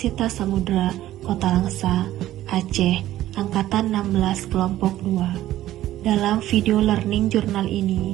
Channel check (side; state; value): left; quieter; 14.0 dB